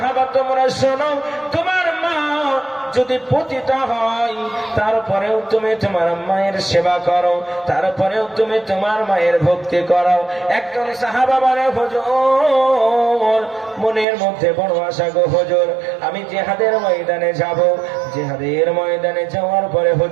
তোমরা শোনো, তোমার মা যদি পতিত হয়, তারপরেও তুমি তোমার মায়ের সেবা করো, তারপরেও তুমি তোমার মায়ের ভক্তি করো। একজন সাহাবা বলে, হুজুর মনের মধ্যে বড় আশা গো হুজুর, আমি জিহাদের ময়দানে যাব, জিহাদের ময়দানে যাওয়ার পরে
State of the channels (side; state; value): left; drops out; at 14.1 s